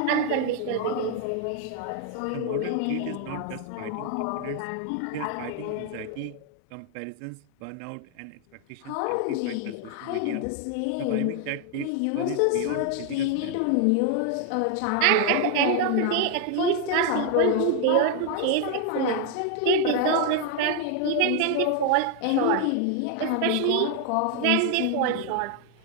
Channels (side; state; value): both; different; correlation 0.00